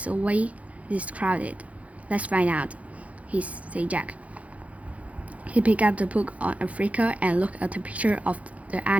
away this crowded?" "Let's find out," said Jack. He picked up the book on Africa and looked at the picture of the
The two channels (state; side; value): late; left; 0.066 ms